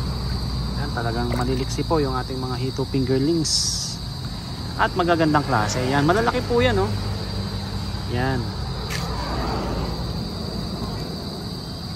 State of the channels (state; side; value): identical; both; correlation 1.00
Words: Yan, talagang maliliksi po yung ating mga hito fingerlings. At magagandang klase. Yan, malalaki po 'yan, oh. Yan.